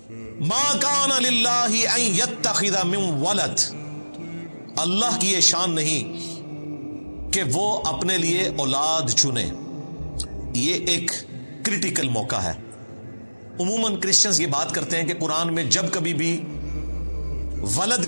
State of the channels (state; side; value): inverted; both; correlation -1.00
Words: ما کان للہ ان یتخذ من ولد، اللہ کی یہ شان نہیں کہ وہ اپنے لیے اولاد چنے. یہ ایک کریٹیکل موقع ہے. عموماً کرسچنز یہ بات کرتے ہیں کہ قرآن میں جب کبھی بھی ولد